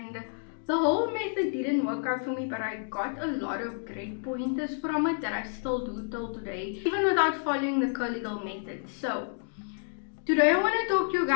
the whole method didn't work out for me, but I got a lot of great pointers from it that I still do till today, even without following the curly girl method. So today I want to talk to you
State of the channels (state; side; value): silent; right; digital silence